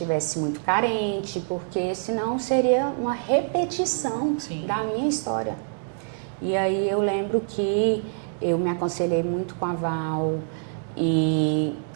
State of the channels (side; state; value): left; silent; digital silence